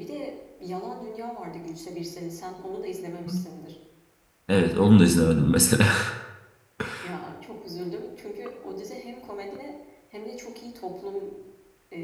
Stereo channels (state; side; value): identical; both; correlation 1.00